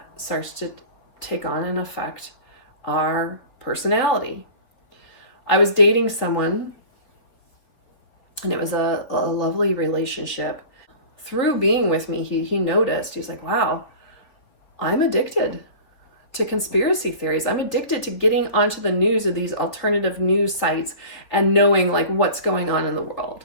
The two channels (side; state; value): right; late; 4.0 ms